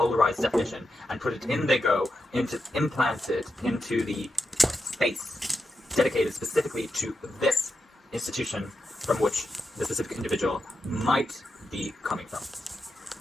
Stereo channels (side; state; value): both; normal; correlation 0.87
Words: definition and put it in they go, implant it into the space dedicated specifically to this institution from which the specific individual might be coming from?